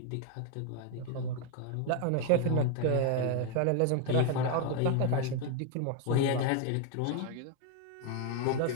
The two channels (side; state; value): both; different; correlation 0.01